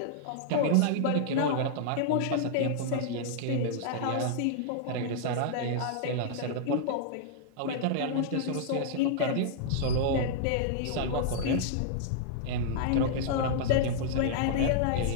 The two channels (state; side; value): different; both; correlation -0.01